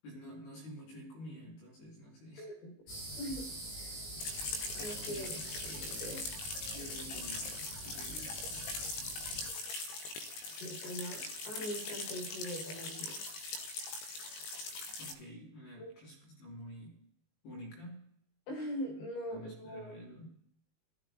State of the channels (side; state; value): right; late; 19 ms